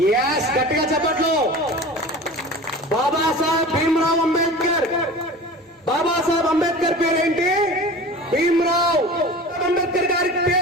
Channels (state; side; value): normal; both; correlation 0.37